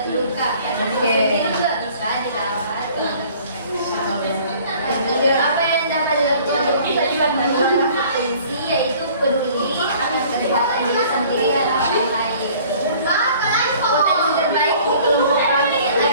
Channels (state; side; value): inverted; both; correlation -0.52